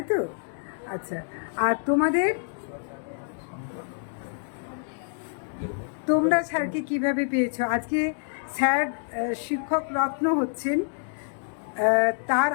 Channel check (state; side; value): silent; right; digital silence